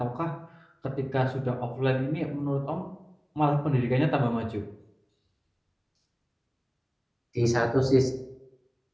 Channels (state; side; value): identical; both; correlation 1.00